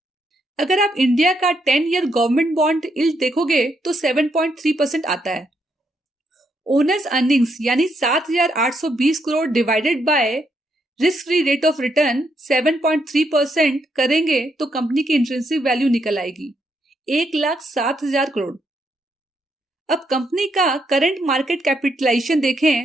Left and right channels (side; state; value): both; normal; correlation 0.77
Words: अगर आप इंडिया का 10 ईयर गवर्नमेंट बॉन्ड यील्ड देखोगे तो 7.3% आता है। ओनर्स अर्निंग्स यानी 7,820 crore divided by risk free rate of return 7.3% करेंगे तो कंपनी की इंट्रिंसिक वैल्यू निकल आएगी 1,07,000 करोड़। अब कंपनी का करंट मार्केट कैपिटलाइजेशन